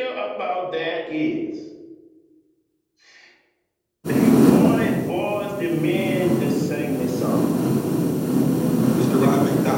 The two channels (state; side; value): identical; both; correlation 1.00